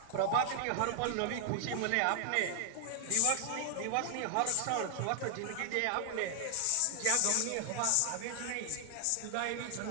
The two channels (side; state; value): both; different; correlation 0.00